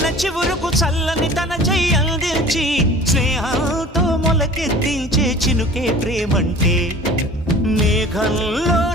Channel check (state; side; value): normal; both; correlation 0.43